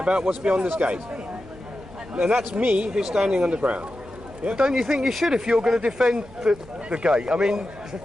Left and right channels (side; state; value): right; noise; hum, 22 dB below the sound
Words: what's beyond this gate, and that's me who's standing on the ground. Yeah? Don't you think you should if you're going to defend the gate? I mean,